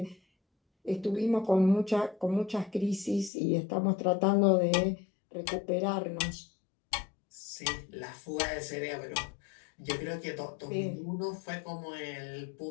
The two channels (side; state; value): right; drops out; at 3.3 s